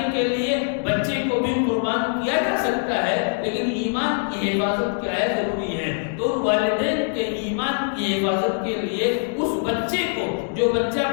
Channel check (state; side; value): silent; right; digital silence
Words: کے لیے بچے کو بھی قربان کیا جا سکتا ہے، لیکن ایمان کی حفاظت کیا ہے، ضروری ہے۔ تو والدین کے ایمان کی حفاظت کے لیے اس بچے کو، جو بچہ